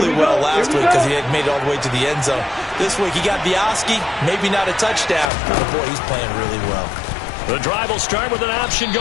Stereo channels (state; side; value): drops out; right; at 5.2 s